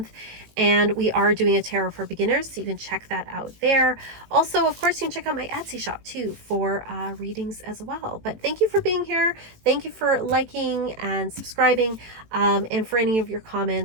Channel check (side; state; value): left; late; 18 ms